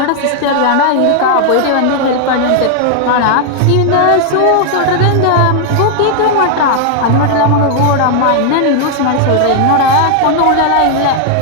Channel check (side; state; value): both; different; correlation 0.00